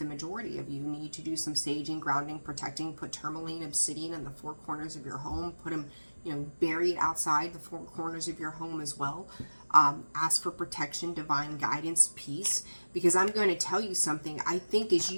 majority of you need to do some saging, grounding, protecting, put tourmaline, obsidian in the four corners of your home, put them, you know, buried outside the four corners of your home as well. Ask for protection, divine guidance, peace, because I'm going to tell you something. I think as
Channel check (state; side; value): inverted; both; correlation -1.00